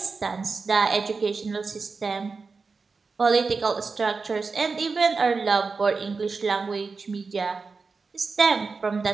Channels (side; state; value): left; quieter; 4.5 dB